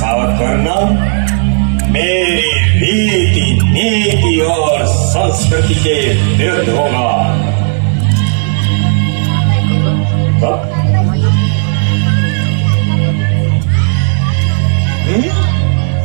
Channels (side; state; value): left; silent; 63 dB below the other